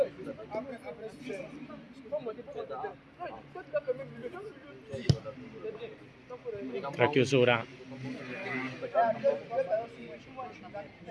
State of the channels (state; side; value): identical; both; correlation 1.00